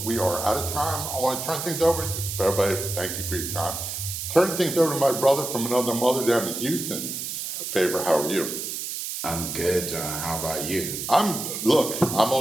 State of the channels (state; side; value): noise; right; hiss, 5 dB below the sound